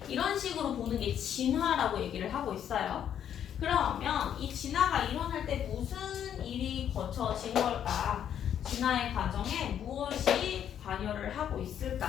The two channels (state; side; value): quieter; right; 9.5 dB